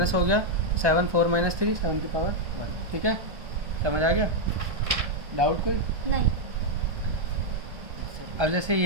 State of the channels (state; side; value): late; left; 1.2 ms